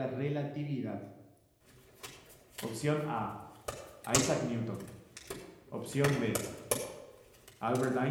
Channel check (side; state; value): both; identical; correlation 1.00